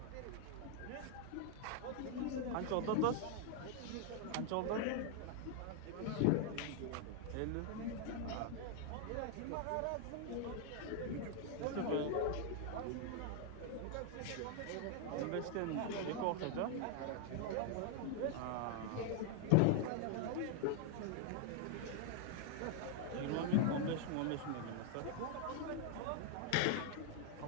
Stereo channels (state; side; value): different; both; correlation 0.00